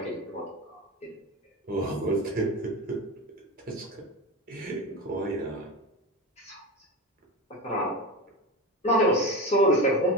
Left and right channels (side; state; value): both; normal; correlation 0.24